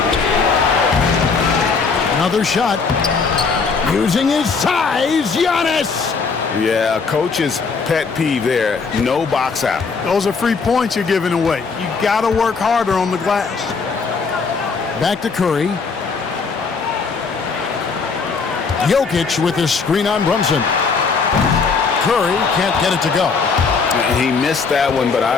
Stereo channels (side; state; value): right; quieter; 5.0 dB